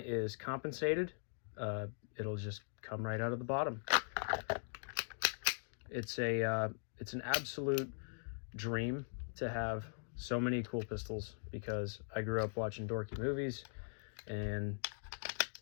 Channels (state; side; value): silent; right; digital silence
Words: compensated, it'll just come right out of the bottom. It's an absolute dream to have so many cool pistols, because I grew up watching dorky movies, and